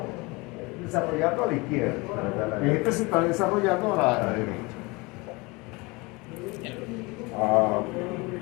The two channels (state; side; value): quieter; right; 25.0 dB